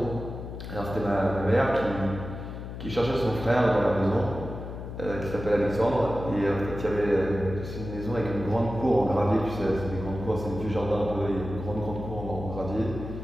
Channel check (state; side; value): noise; left; hum, 9 dB below the sound